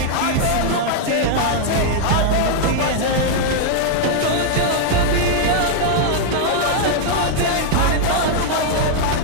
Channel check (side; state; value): both; different; correlation -0.01